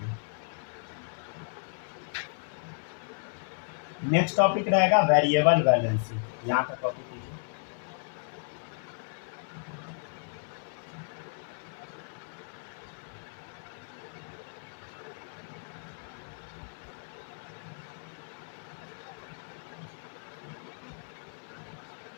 नेक्स्ट टॉपिक रहेगा वेरिएबल वैलेंसी, यहाँ तक कॉपी कीजिए।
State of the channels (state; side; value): silent; right; 56 dB below the other